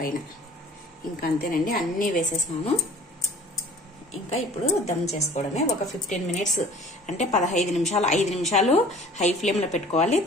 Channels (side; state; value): both; normal; correlation 0.48